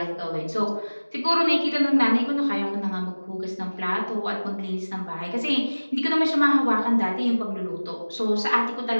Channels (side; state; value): both; inverted; correlation -1.00